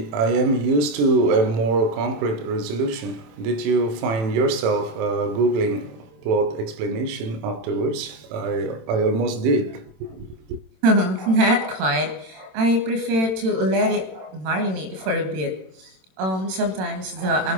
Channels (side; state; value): left; late; 27 ms